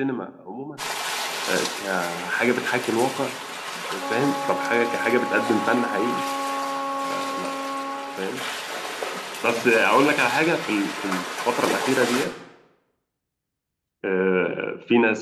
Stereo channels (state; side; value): identical; both; correlation 1.00